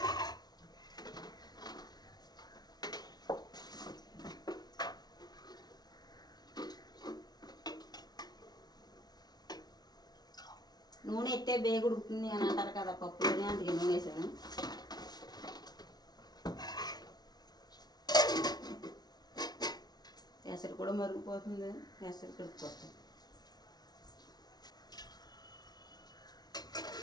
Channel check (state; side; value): late; right; 0.19 ms